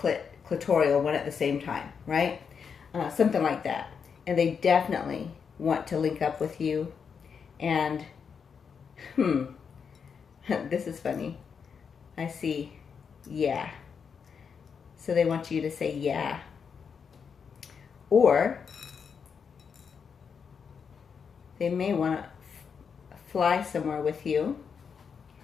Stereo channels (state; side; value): quieter; right; 6.4 dB